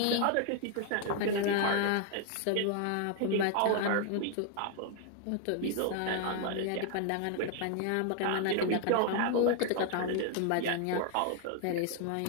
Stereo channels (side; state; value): both; different; correlation 0.00